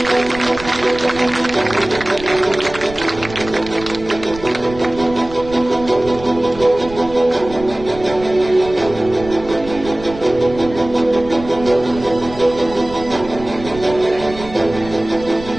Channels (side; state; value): right; noise; rumble, 15 dB below the sound